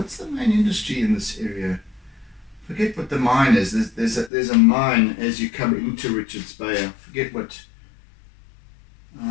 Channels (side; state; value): right; drops out; at 4.3 s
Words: the main industry in this area? Forget what the mine is. There's a mine as you come into Richards Bay. I forget what.